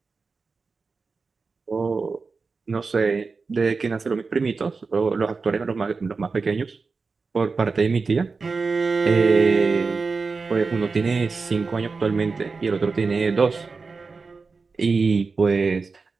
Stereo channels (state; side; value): quieter; left; 4.4 dB